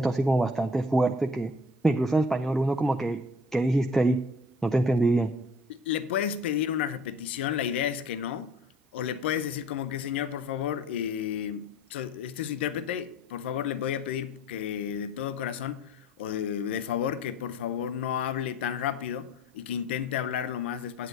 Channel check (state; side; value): normal; both; correlation 0.49